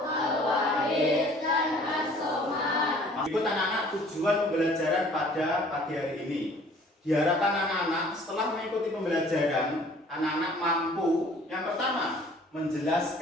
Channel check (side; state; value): both; normal; correlation 0.53